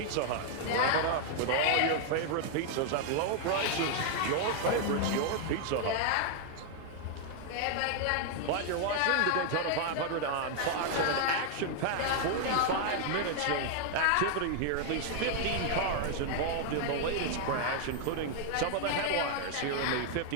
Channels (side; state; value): both; different; correlation 0.00